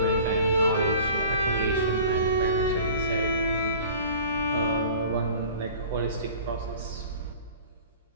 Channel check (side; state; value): both; inverted; correlation -0.43